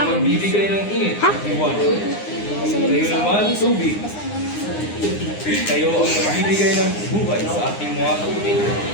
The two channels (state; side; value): late; right; 9.7 ms